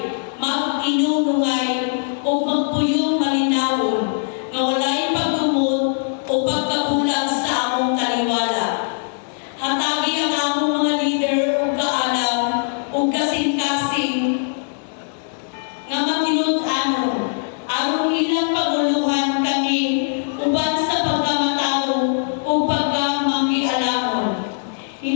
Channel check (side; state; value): right; silent; digital silence